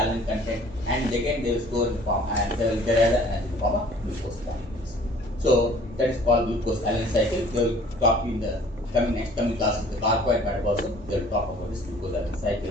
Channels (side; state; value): both; normal; correlation 0.52